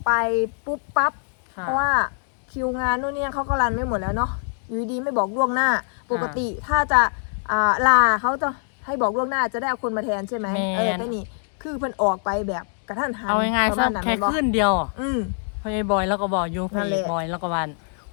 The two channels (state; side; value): silent; right; 60 dB below the other